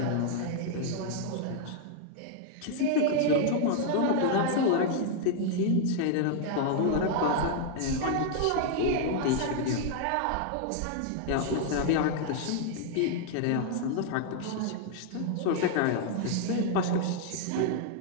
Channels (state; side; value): different; both; correlation 0.00